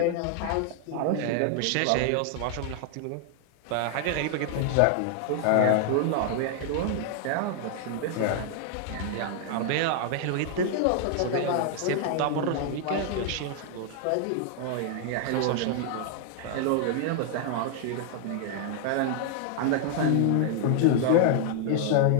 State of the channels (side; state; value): both; different; correlation 0.00